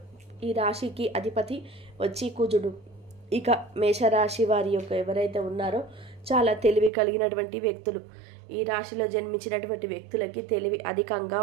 ఈ రాశికి అధిపతి వచ్చి కుజుడు. ఇక మేషరాశి వారి యొక్క ఎవరైతే ఉన్నారో చాలా తెలివి కలిగినటువంటి వ్యక్తులు. ఈ రాశిలో జన్మించినటువంటి వ్యక్తులకి తెలివి అధికంగా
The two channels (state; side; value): drops out; left; at 6.9 s